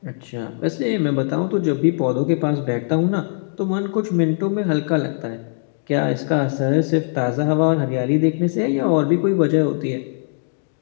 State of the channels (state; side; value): silent; right; digital silence